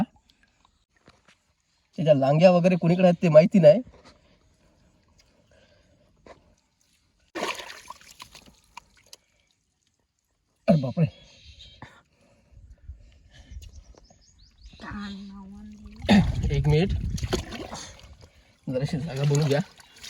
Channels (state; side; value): identical; both; correlation 1.00